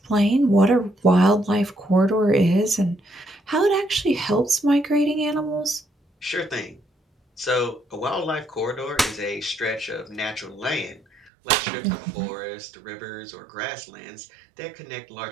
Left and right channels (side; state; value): left; drops out; at 11.3 s